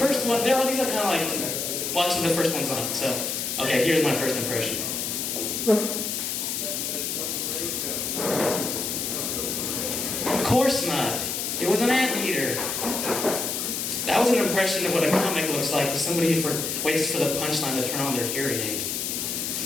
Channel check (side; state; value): left; noise; hiss, 2 dB below the sound